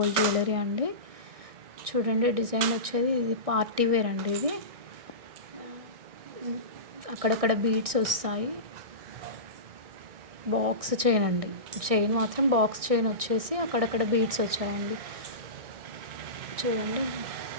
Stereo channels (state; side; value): late; left; 1.6 ms